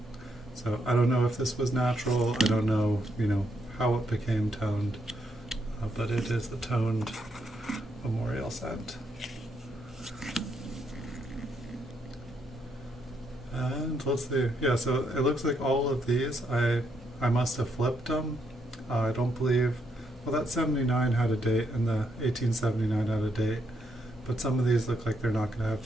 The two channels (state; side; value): normal; both; correlation 0.77